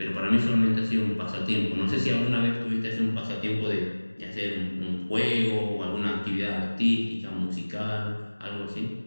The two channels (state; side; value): inverted; both; correlation -1.00